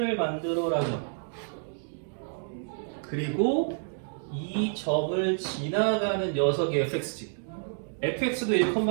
만들어라죠 그리고 이 점을 지나가는 녀석이 fx지 fx도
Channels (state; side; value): silent; left; digital silence